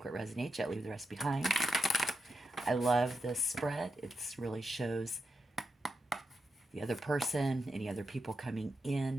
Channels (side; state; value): both; normal; correlation 0.85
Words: what resonates, yet leave the rest behind. I love this spread. It really shows the other person, any other people coming